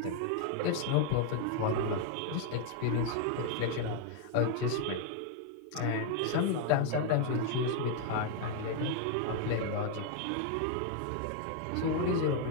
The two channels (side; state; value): both; different; correlation 0.00